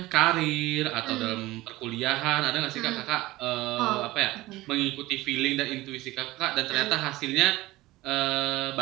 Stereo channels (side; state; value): left; quieter; 18.6 dB